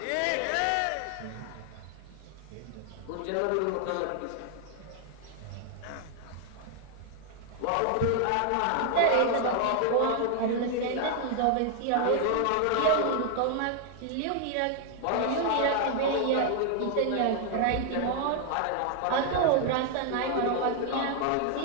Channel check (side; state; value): both; different; correlation 0.00